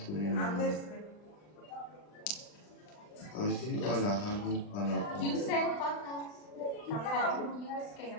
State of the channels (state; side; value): late; right; 39 ms